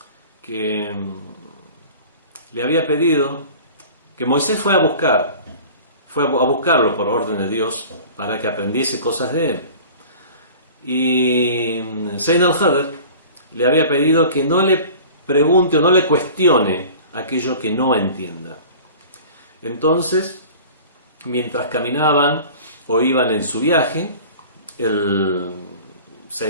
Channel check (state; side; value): inverted; both; correlation -0.41